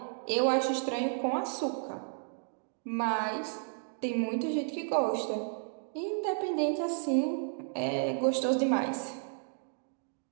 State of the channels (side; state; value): left; silent; digital silence